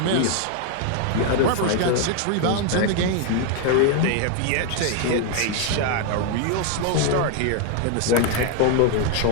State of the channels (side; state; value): both; different; correlation 0.01